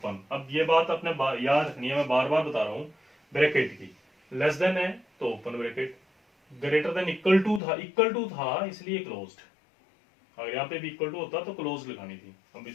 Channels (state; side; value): drops out; right; at 7.6 s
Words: अब ये बात अपने याद रखनी है, मैं बार बार बता रहा हूँ. ब्रैकेट की लेस देन है तो open bracket, greater than equal to था इसलिए क्लोज्ड. अगर यहाँ पे भी इक्वल टू होता तो क्लोज लगानी थी. अब